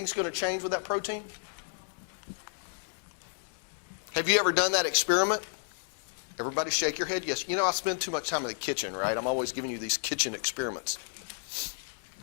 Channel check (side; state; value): right; silent; 57 dB below the other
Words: going to change with that protein? Have you ever done that experiment? Everybody shake your head. Yes. I spend too much time in the kitchen, right? I'm always giving you these kitchen experiments.